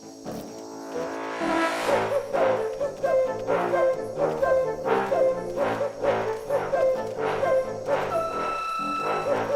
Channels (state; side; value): identical; both; correlation 1.00